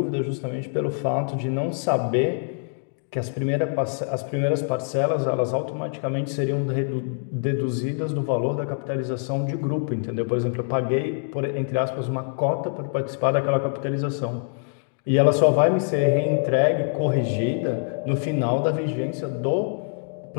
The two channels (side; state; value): right; silent; digital silence